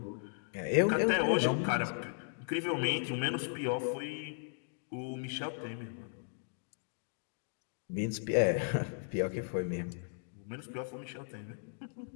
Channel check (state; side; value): silent; right; digital silence